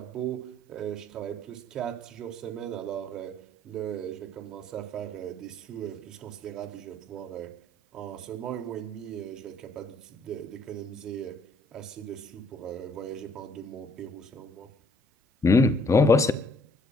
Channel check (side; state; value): both; normal; correlation 0.63